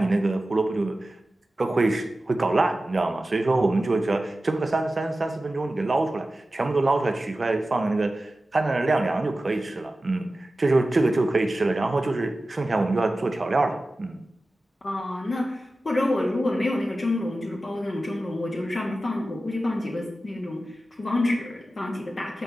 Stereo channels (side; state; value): both; normal; correlation 0.95